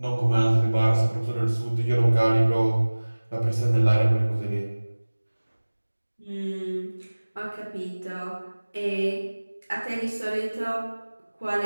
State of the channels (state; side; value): inverted; both; correlation -1.00